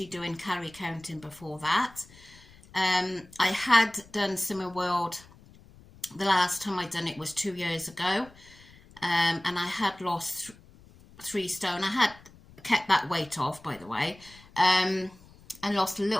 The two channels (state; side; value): noise; left; rumble, 24 dB below the sound